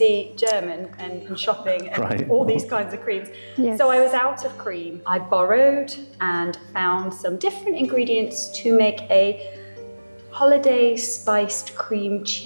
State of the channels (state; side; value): inverted; both; correlation -1.00